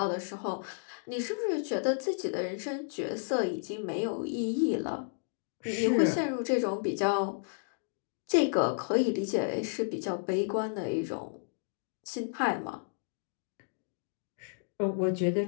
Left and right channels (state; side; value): silent; right; digital silence